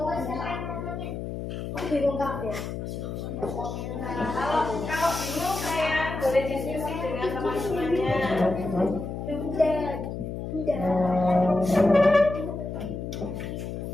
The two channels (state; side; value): noise; left; hum, 6 dB below the sound